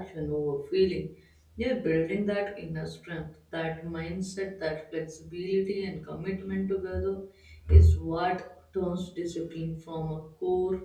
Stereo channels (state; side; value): identical; both; correlation 1.00